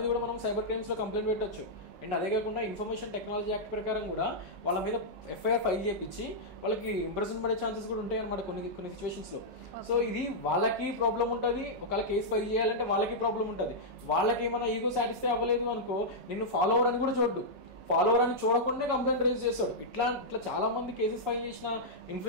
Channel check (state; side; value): normal; both; correlation -0.08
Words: సైబర్ క్రైమ్స్లో కంప్లైంట్ పెట్టచ్చు. అండ్ అదే కాకుండా ఇన్ఫర్మేషన్ టెక్నాలజీ యాక్ట్ ప్రకారం కూడా వాళ్ళ మీద ఎఫ్ఐఆర్ ఫైల్ చేయించి వాళ్ళకి ఇంప్రెషన్ పడే ఛాన్సెస్ కూడా ఉంటాయి అనమాట కొన్ని సిచ్యువేషన్స్లో. సో ఇది వాళ్ళకి ప్రాబ్లం ఉంటుంది, ఒకవేళ కేసు ఫైల్ చేయాలంటే వాళ్ళకి ప్రాబ్లం ఉంటుంది. వాళ్ళకి ఏమైనా ఈగో సాటిస్ఫై అవ్వలేదు అనుకో, నిన్ను ఫాలోవర్ అని కూడా చూడ్డు, ఫాలోవర్ అని చూడకుండా కంప్లైంట్ రైజ్ చేస్తాడు. ఇట్లా చాలా మంది కేసెస్ ఫైల్ చేసిన